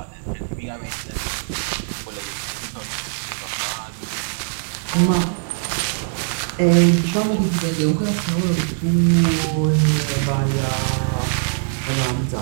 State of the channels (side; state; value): left; silent; digital silence